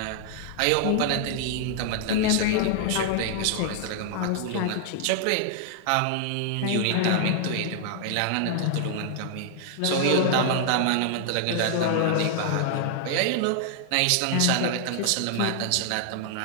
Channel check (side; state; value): both; different; correlation -0.01